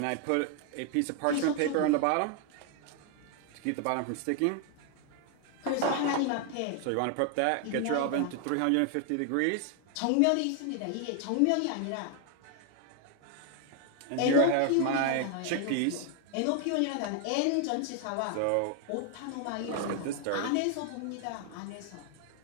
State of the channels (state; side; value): different; both; correlation 0.00